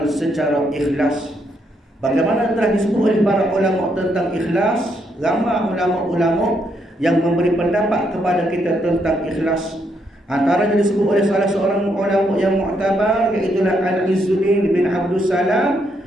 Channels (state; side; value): normal; both; correlation 0.76